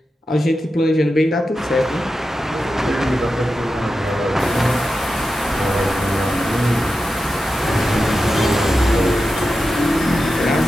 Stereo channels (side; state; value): both; normal; correlation 0.91